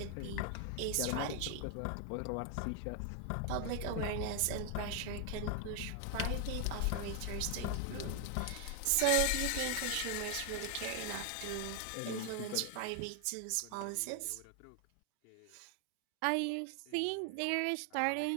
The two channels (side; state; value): both; different; correlation 0.00